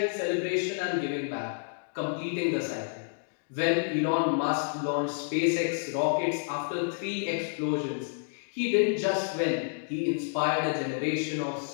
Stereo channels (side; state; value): right; silent; digital silence